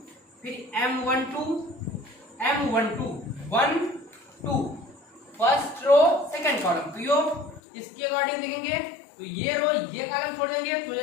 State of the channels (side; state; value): right; drops out; at 7.6 s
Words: फिर M12 1 2 first row second column, तो यो इसके अकॉर्डिंग देखेंगे तो ये रो ये कॉलम छोड़ देंगे तो हो